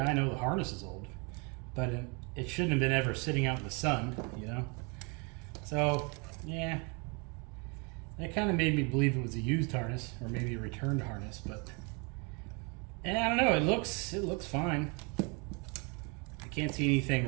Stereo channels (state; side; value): quieter; left; 32.2 dB